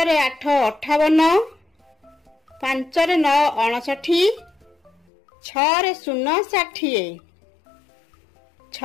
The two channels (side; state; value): right; drops out; at 5.0 s